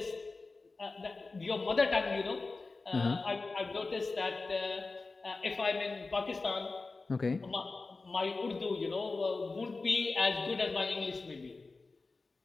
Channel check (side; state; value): right; quieter; 3.7 dB